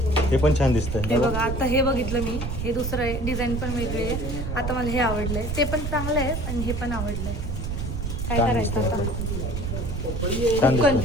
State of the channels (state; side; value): noise; right; rumble, 4 dB below the sound